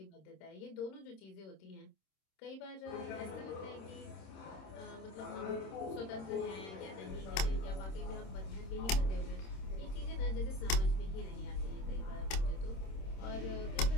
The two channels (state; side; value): late; right; 26 ms